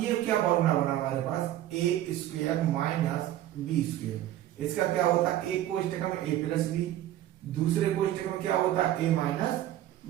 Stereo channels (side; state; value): left; quieter; 13.0 dB